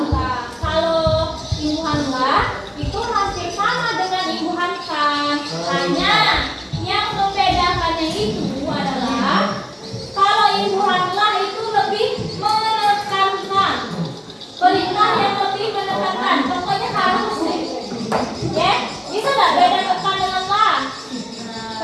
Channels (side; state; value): both; identical; correlation 1.00